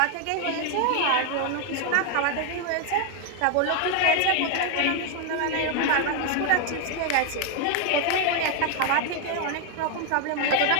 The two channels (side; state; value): both; different; correlation 0.01